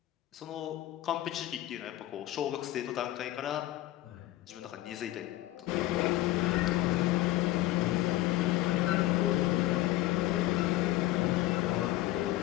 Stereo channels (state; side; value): quieter; right; 15.9 dB